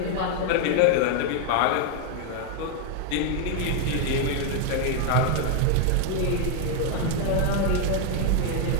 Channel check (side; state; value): both; different; correlation 0.01